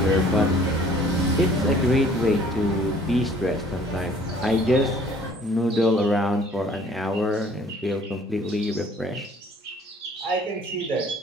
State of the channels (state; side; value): normal; both; correlation 0.55